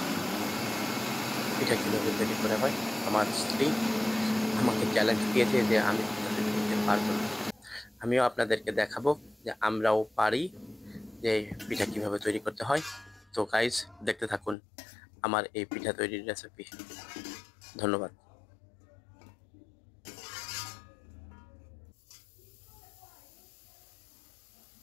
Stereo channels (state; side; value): drops out; right; at 14.6 s